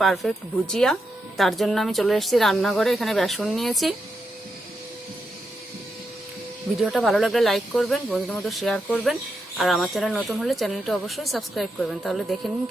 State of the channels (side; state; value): both; normal; correlation 0.85